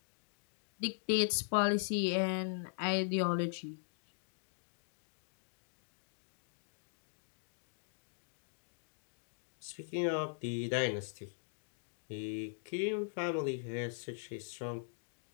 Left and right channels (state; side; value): silent; right; digital silence